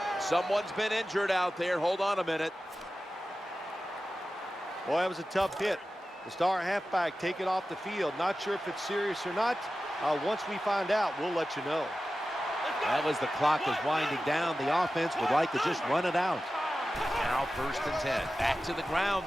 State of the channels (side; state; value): both; normal; correlation 0.94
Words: Someone's been injured out there. Hold on a minute. Boy, that was a tough hit. The star halfback taken off the field. Not sure if it's serious or not. Once we find out, we'll let you know. That was the clock was winding down. The offense would like to just run it out. Now 1st and 10. Back to the